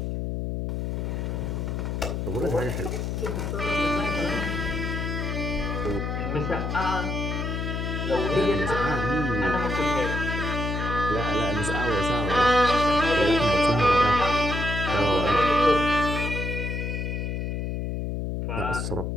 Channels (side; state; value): left; noise; hum, 2 dB below the sound